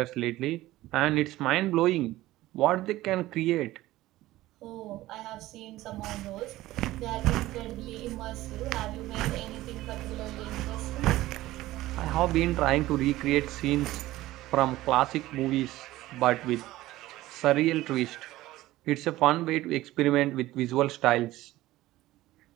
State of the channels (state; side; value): quieter; left; 16.6 dB